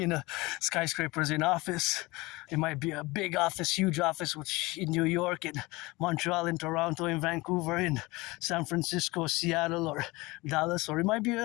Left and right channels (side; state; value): right; quieter; 22.4 dB